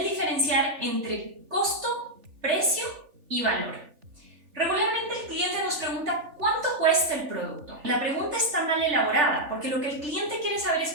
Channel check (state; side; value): late; left; 3.4 ms